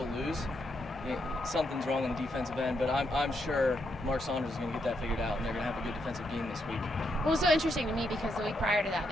lose, something's wrong on the defensive end, but I'm sure Mark Saunders is going to get that figured out, and they're going to have a good defensive game this week. Well, it was so interesting to me because the week prior to that,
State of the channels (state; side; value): normal; both; correlation 0.79